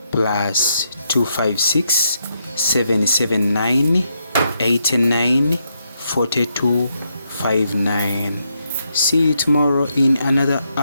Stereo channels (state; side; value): inverted; both; correlation -0.79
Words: +256 779 89 42 59. See you tomorrow in another